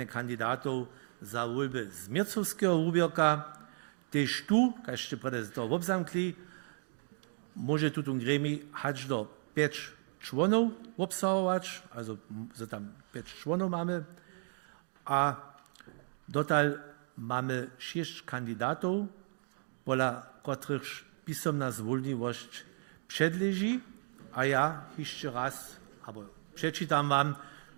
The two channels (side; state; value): left; silent; 55 dB below the other